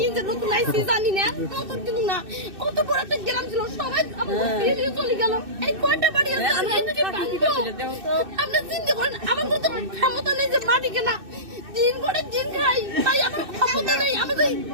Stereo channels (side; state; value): left; late; 2.6 ms